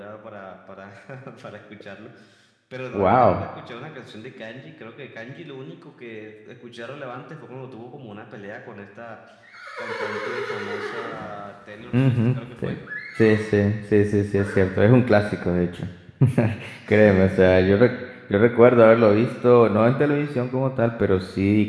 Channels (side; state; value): both; identical; correlation 1.00